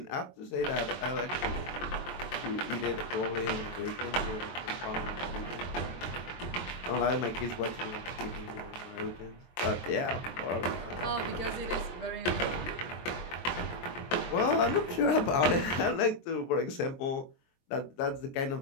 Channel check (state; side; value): late; right; 23 ms